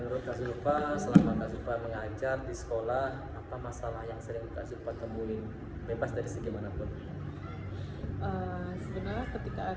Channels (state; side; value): identical; both; correlation 1.00